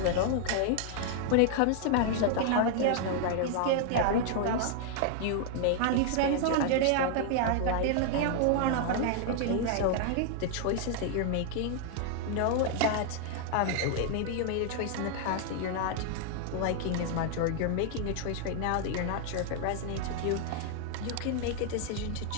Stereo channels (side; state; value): both; different; correlation 0.00